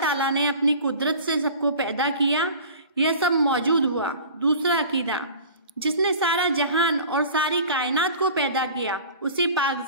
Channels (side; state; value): both; inverted; correlation -0.41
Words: ताला ने अपनी कुदरत से सबको पैदा किया, यह सब मौजूद हुआ। दूसरा अकीदा, जिसने सारा जहान और सारी कायनात को पैदा किया उसी पाक